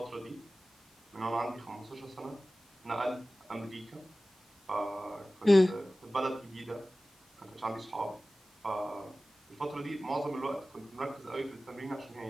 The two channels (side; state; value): both; normal; correlation 0.97